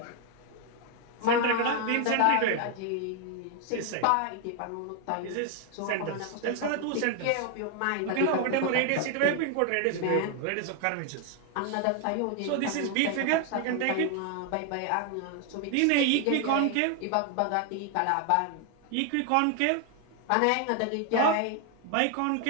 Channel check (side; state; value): both; different; correlation 0.00